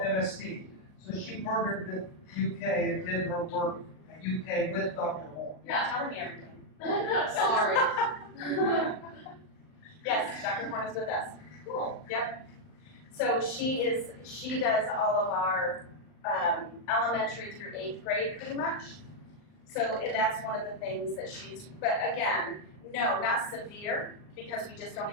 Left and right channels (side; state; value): right; late; 39 ms